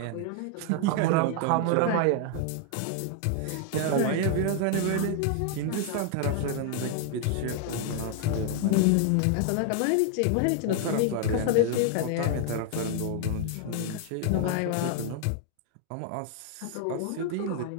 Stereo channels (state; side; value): different; both; correlation 0.00